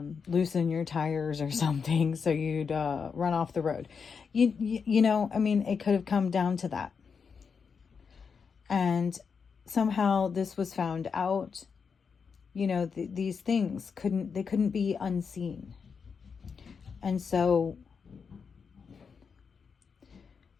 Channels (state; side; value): quieter; right; 5.9 dB